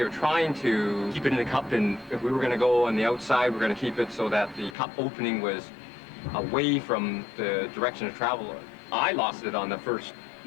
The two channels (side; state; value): right; drops out; at 4.8 s